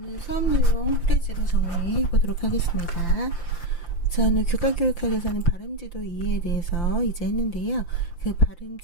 수업 내용 프레지로 정리해 보도록 하겠습니다. 저는 교과교육학에서는 발음지도 이해에 대해서 이제 했는데요. 그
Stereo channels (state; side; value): late; right; 5.8 ms